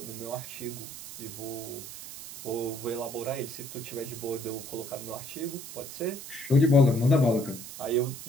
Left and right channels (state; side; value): noise; right; hiss, 11 dB below the sound